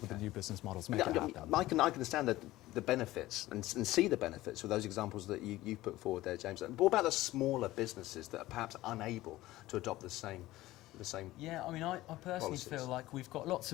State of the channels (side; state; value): right; quieter; 17.0 dB